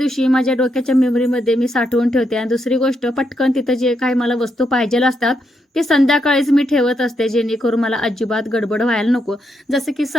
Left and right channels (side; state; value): both; normal; correlation 0.80